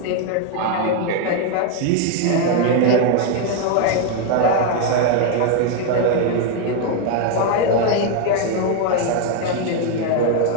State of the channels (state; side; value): different; both; correlation 0.01